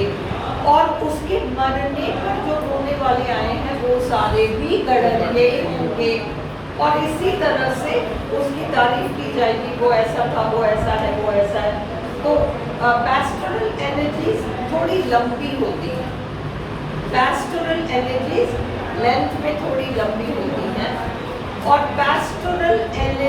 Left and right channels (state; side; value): identical; both; correlation 1.00